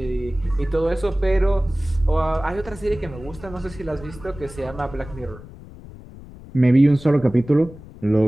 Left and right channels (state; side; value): noise; left; rumble, 17 dB below the sound